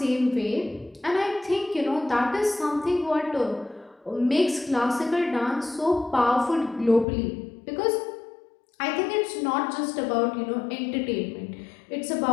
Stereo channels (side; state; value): right; drops out; at 7.1 s